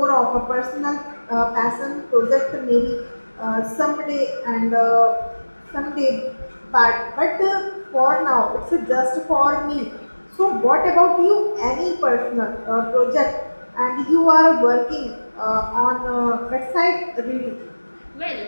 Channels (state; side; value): inverted; both; correlation -1.00